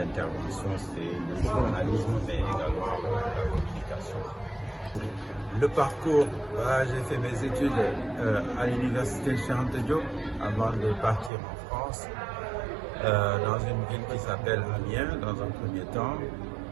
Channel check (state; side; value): drops out; left; at 11.3 s